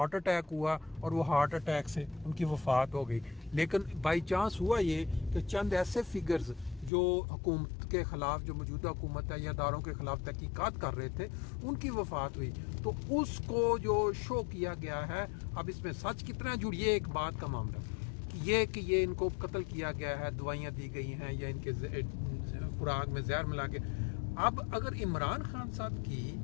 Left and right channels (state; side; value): drops out; right; at 6.9 s